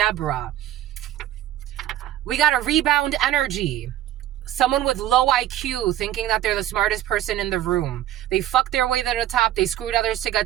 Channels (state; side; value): quieter; left; 12.8 dB